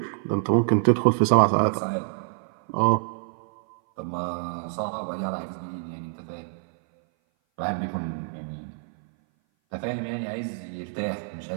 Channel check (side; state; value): left; silent; 57 dB below the other